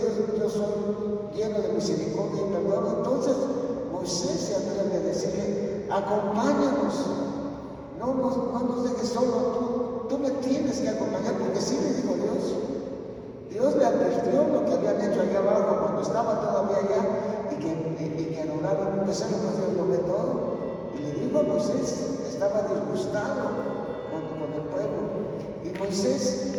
yo soy lleno de misericordia y perdón, entonces Moisés se atreve a decirle, acompáñanos, no nos dejes solo, tú me tienes que acompañar, porque sí le dijo Dios. Dios le advirtió lo que habían hecho allá abajo cuando estaba todavía allá y que adoraban un becerro, pues Dios lo ve todo. Y le dijo a Moisés, estaba disgustado con el pueblo. Y Moisés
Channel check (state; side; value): identical; both; correlation 1.00